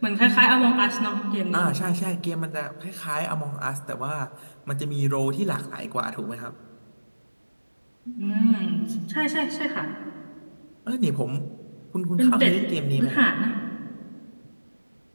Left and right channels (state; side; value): inverted; both; correlation -1.00